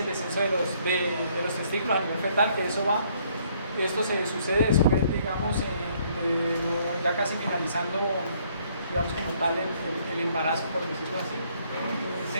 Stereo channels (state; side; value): inverted; both; correlation -0.66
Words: descenso de los testículos a nivel fetal, que esto se sucede después, digamos, ya casi finalizando, digamos, como tal el embarazo, por decirlo así.